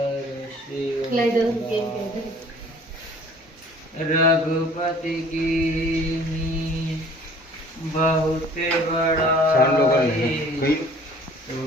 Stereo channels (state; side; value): normal; both; correlation 0.52